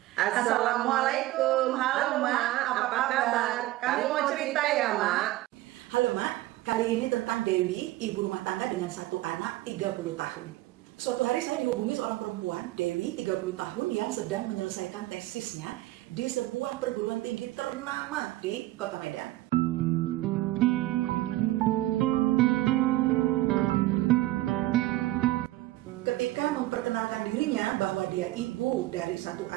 Assalamualaikum, halo Mak, apa kabar? Kamu mau cerita ya Mak? Halo Mak, kali ini tentang Dewi, ibu rumah tangga dengan satu anak 30 tahun. Suatu hari saya dihubungi seorang perempuan, Dewi 30 tahun yang sedang menyelesaikan tesisnya di sebuah perguruan tinggi ternama di Kota Medan. Ketika memperkenalkan dirinya bahwa dia ibu dari satu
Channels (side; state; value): left; quieter; 17.0 dB